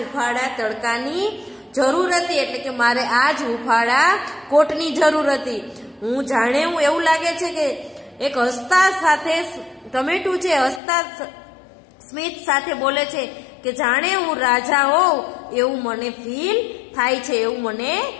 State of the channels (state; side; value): drops out; right; at 10.8 s